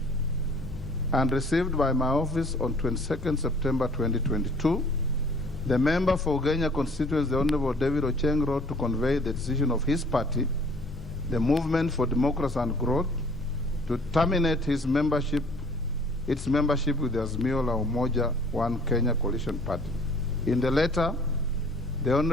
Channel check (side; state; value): left; noise; rumble, 14 dB below the sound